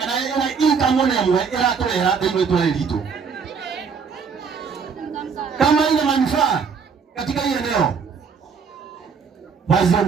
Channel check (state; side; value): quieter; left; 5.9 dB